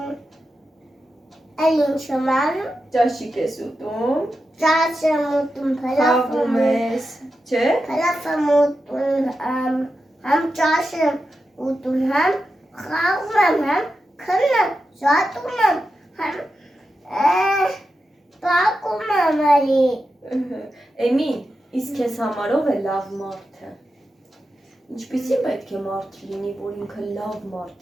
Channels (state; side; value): normal; both; correlation 0.90